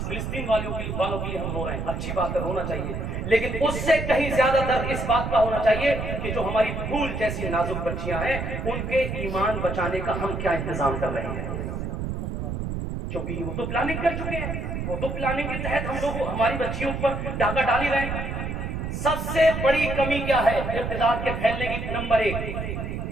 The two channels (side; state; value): right; noise; rumble, 4 dB below the sound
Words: فلسطین والوں کے لیے ہم رو رہے ہیں. اچھی بات ہے، رونا چاہیے، لیکن اس سے کہیں زیادہ درد اس بات کا ہونا چاہیے کہ جو ہماری پھول جیسی نازک بچیاں ہیں ان کے ایمان بچانے کا ہم کیا انتظام کر رہے ہیں. کیونکہ وہ تو پلاننگ کر چکے ہیں، وہ تو پلاننگ کے تحت ہم لوگ ہماری بچیوں پر ڈاکہ ڈال ہی رہے ہیں. سب سے بڑی کمی کیا ہے ارتداد کے پھیلنے کی؟ نمبر ایک